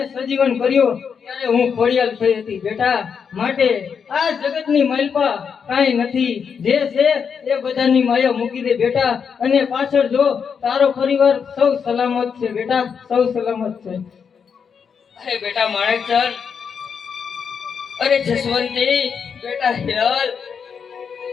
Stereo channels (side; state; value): right; quieter; 6.6 dB